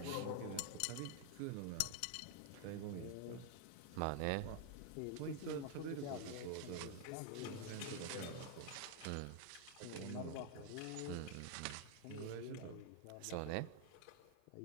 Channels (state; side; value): different; both; correlation 0.00